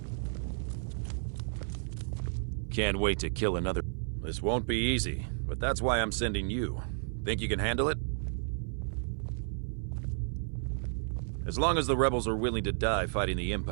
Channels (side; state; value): left; silent; 56 dB below the other